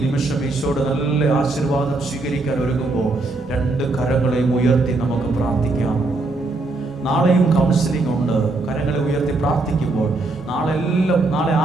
നിമിഷം ഈശോയുടെ നല്ല ആശീർവാദം സ്വീകരിക്കാൻ ഒരുങ്ങുമ്പോൾ രണ്ട് കരങ്ങളെയും ഉയർത്തി നമുക്ക് പ്രാർത്ഥിക്കാം. നാളെയും കൗൺസിലിംഗ് ഉണ്ട്. കരങ്ങളെ ഉയർത്തി പ്രാർത്ഥിക്കുമ്പോൾ നാളെ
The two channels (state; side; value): quieter; left; 3.1 dB